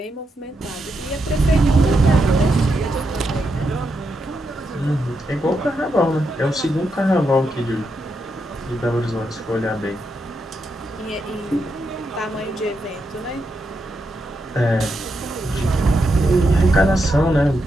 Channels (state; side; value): normal; both; correlation 0.83